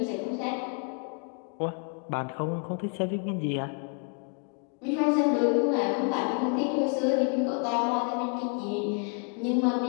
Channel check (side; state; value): right; quieter; 39.9 dB